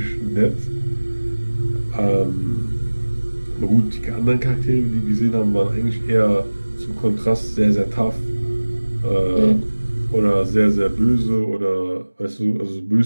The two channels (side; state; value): both; inverted; correlation -1.00